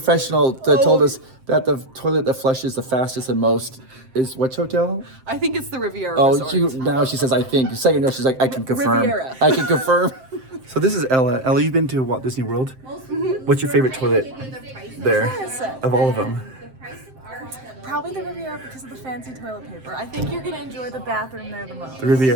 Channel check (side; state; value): left; late; 7.7 ms